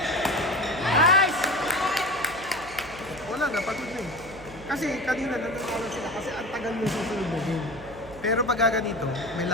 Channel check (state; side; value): noise; right; hum, 17 dB below the sound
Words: Nice! Wala na, pagod na eh. Kasi kanina nananalo sila kasi ang tagal mo susunod na game. Pero pag ganito, may